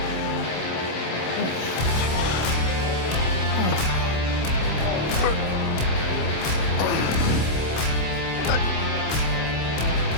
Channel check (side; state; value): right; late; 26 ms